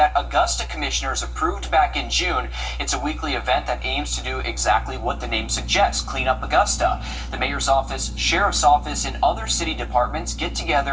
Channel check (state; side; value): identical; both; correlation 1.00